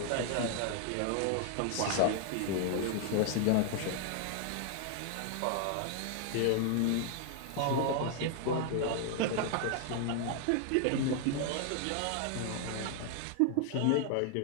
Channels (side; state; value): both; different; correlation 0.00